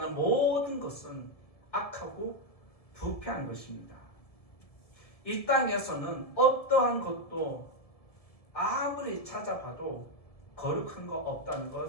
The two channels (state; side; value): late; right; 1.7 ms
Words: 모든 것은 악하고 부패한 것입니다. 이 땅에서는 어떠한 것도 아무리 찾아봐도 거룩한 거 없다는